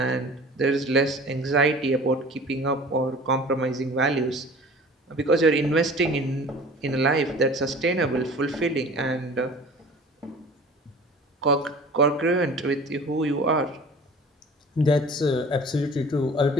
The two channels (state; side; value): normal; both; correlation 0.44